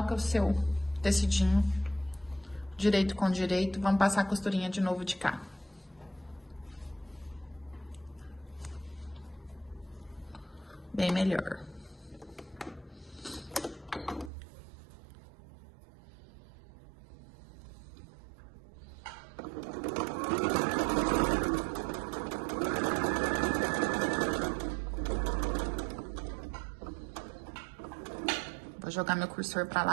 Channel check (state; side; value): drops out; left; at 14.3 s